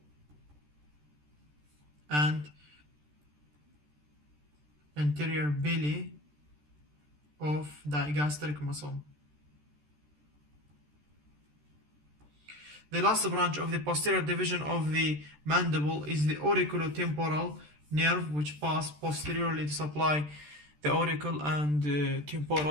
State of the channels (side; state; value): left; late; 13 ms